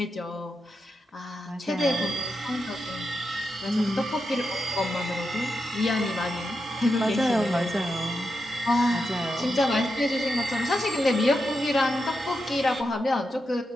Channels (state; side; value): normal; both; correlation 0.87